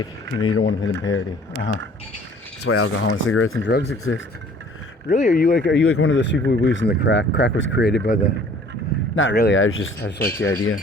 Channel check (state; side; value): normal; both; correlation 0.53